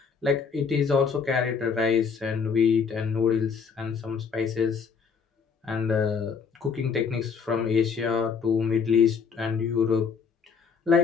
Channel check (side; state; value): right; quieter; 5.9 dB